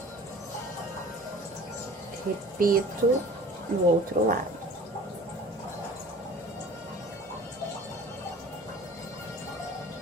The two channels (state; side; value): normal; both; correlation 0.45